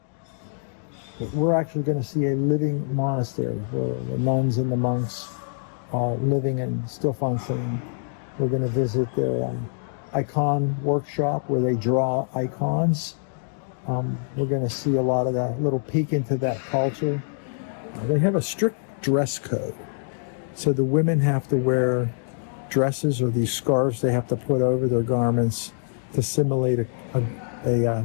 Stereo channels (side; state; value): right; silent; digital silence